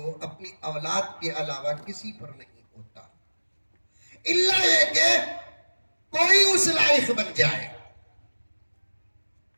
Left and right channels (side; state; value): both; inverted; correlation -1.00